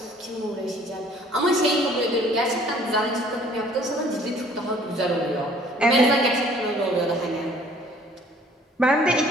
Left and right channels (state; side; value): normal; both; correlation 0.56